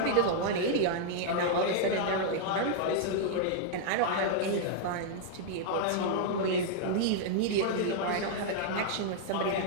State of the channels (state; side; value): different; both; correlation -0.01